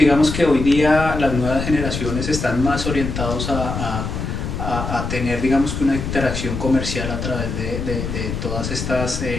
que hoy día las nuevas generaciones están más orientados a tener, digamos que una interacción comercial a través de todas estas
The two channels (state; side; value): noise; left; rumble, 4 dB below the sound